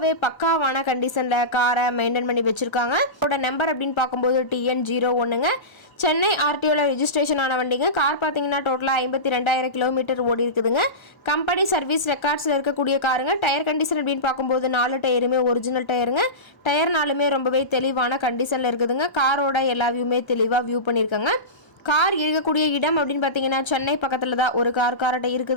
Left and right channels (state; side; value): late; right; 1.0 ms